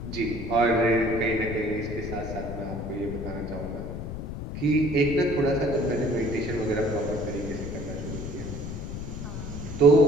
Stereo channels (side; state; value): left; noise; rumble, 7 dB below the sound